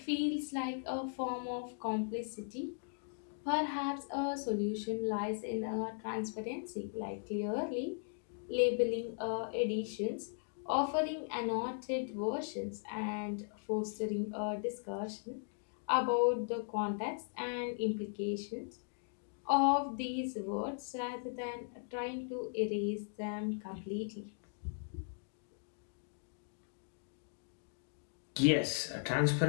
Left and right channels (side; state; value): right; silent; digital silence